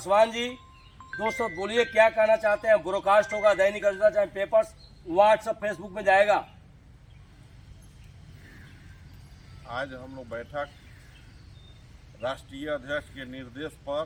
जी, दोस्तों बोलिए क्या कहना चाहते हैं। ब्रॉडकास्ट होगा दैनिक अजंता, चाहे पेपर्स, व्हाट्सएप, फेसबुक में जाएगा। आज हम लोग बैठक राष्ट्रीय अध्यक्ष के निर्देश पर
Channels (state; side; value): identical; both; correlation 1.00